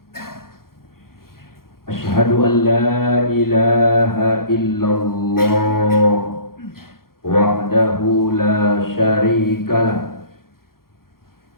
Ashhadu an la ilaha illallah wahdahu la syarika lah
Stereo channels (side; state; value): right; late; 0.92 ms